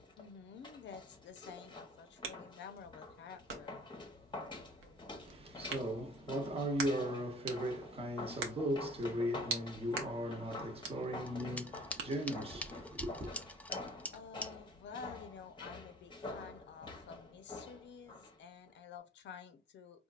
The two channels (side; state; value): both; normal; correlation 0.50